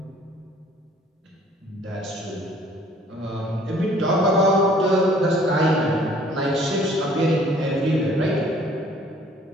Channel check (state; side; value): normal; both; correlation 0.56